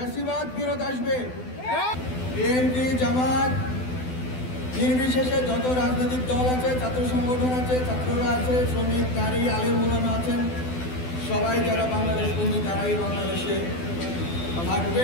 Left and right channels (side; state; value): right; late; 12 ms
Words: ফিরত আসবে। বিএনপি, জামাত নির্বিশেষে যত রাজনৈতিক দল আছে, ছাত্র সংগঠন আছে, ছাত্ররা আছে, শ্রমিক, নারী, আলেম ওলামা আছেন, সবাই যারা বাংলাদেশ বন্ধু তারাই বাংলাদেশে